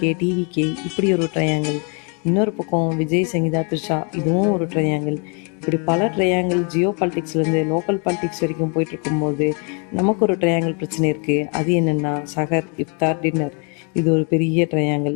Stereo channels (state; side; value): quieter; right; 36.5 dB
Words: டிவிகே இப்படி ஒரு ட்ரையாங்கிள். இன்னொரு பக்கம் விஜய், சங்கீதா, த்ரிஷா இதுவும் ஒரு ட்ரையாங்கிள். இப்படி பல ட்ரையாங்கிள் ஜியோ பாலிட்டிக்ஸ்லேருந்து லோக்கல் பாலிட்டிக்ஸ் வரைக்கும் போயிட்டு இருக்கும்போது நமக்கு ஒரு ட்ரையாங்கிள் பிரச்சனை இருக்குது. அது என்னென்னா சஹர், இஃப்தார், டின்னர். இது ஒரு பெரிய ட்ரையாங்கிள்.